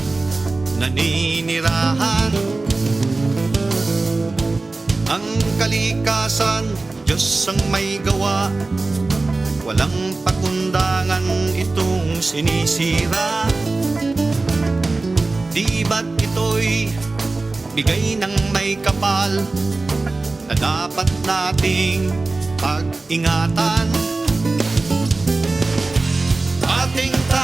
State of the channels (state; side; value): quieter; left; 3.4 dB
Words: naninirahan. Ang kalikasan, Diyos ang may gawa, walang pakundangan itong sinisira. Di ba't ito'y bigay ng may kapal na dapat nating pag-ingatan? Ating